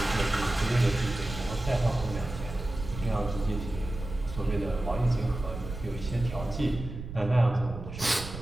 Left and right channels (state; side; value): noise; right; rumble, 9 dB below the sound